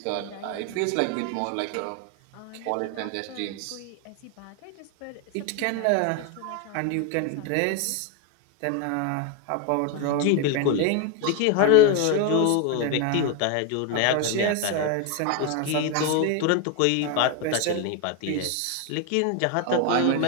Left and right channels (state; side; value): different; both; correlation 0.01